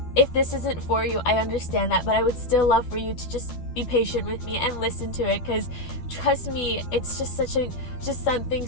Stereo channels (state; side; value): late; right; 12 ms